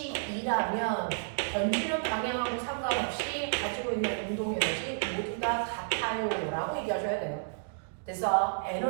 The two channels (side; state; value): left; silent; digital silence